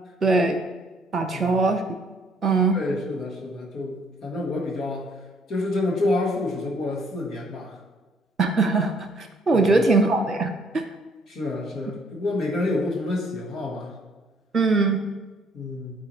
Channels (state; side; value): normal; both; correlation 0.64